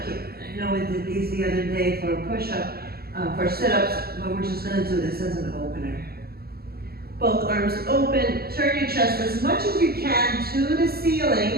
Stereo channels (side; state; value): left; late; 0.45 ms